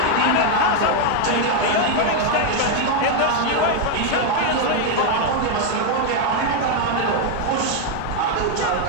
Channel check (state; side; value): different; both; correlation 0.01